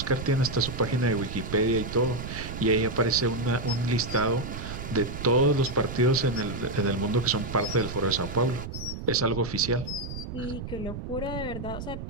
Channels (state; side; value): noise; right; rumble, 8 dB below the sound